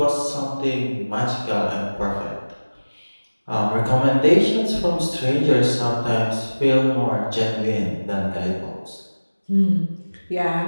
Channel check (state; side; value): inverted; both; correlation -1.00